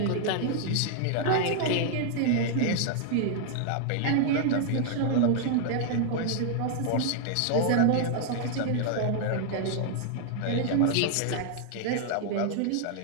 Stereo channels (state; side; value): different; both; correlation -0.01